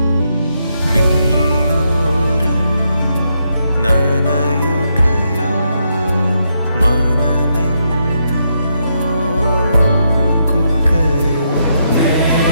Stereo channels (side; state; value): both; inverted; correlation -0.79